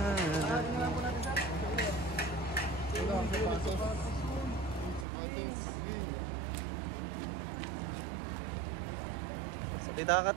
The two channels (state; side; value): drops out; left; at 5.1 s